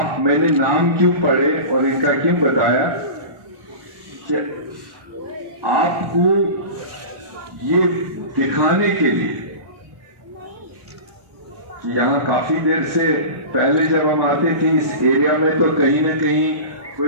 मैंने नाम क्यों पढ़े और इनका क्यों बताया कि आपको ये दिखाने के लिए कि यहाँ काफी देर से पहले जब हम आते थे इस एरिया में तो कहीं ना कहीं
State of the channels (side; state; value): left; late; 1.4 ms